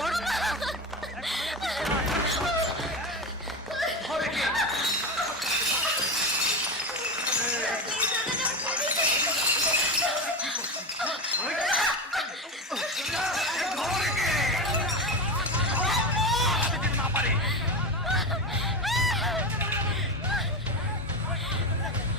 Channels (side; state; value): both; normal; correlation 0.19